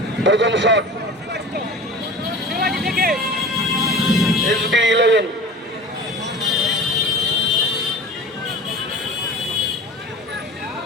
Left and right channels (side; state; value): both; normal; correlation 0.37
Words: প্রথম শট SB11।